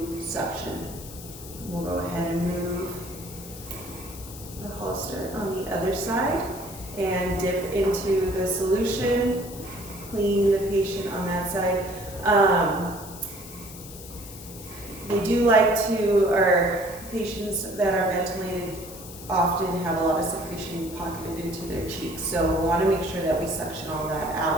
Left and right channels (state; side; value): noise; left; hiss, 15 dB below the sound